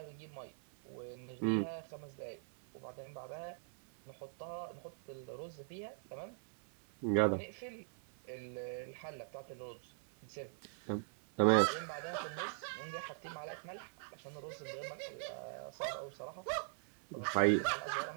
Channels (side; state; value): left; silent; 50 dB below the other